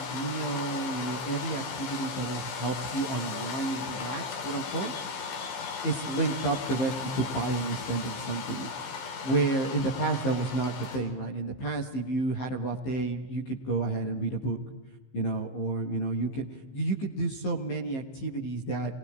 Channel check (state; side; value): late; right; 15 ms